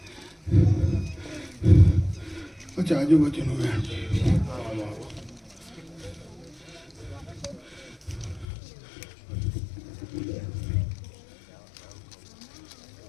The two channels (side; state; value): right; drops out; at 8.5 s